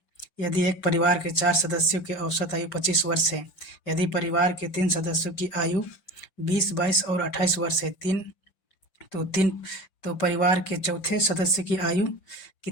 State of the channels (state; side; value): late; right; 5.7 ms